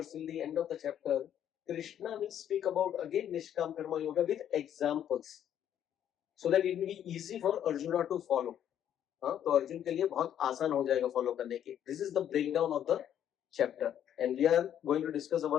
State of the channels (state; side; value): quieter; right; 10.1 dB